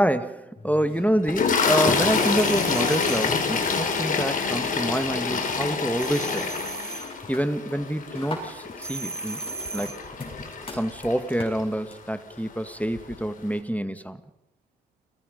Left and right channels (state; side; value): normal; both; correlation 0.57